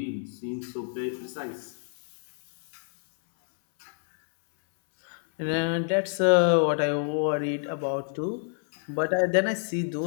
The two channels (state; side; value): silent; right; 60 dB below the other